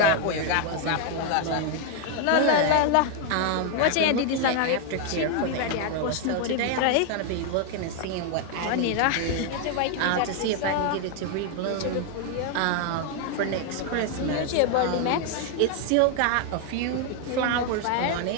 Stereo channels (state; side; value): different; both; correlation 0.00